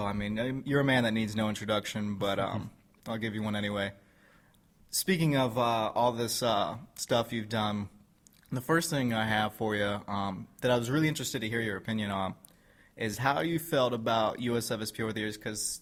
I mean, you're a man that needs no introduction, but I'll give you one anyway. Speaking of all this stuff you've done, the first thing I have for you that I was really interested to hear your opinion on is how you felt about USFSP over the years, because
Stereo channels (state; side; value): identical; both; correlation 1.00